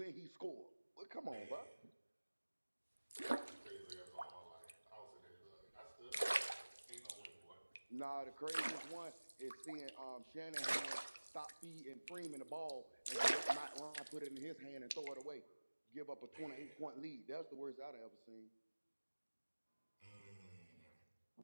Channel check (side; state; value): both; inverted; correlation -1.00